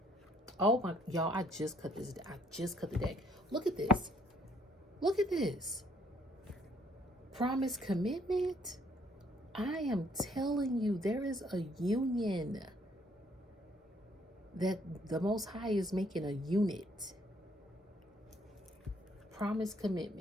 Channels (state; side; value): normal; both; correlation 0.65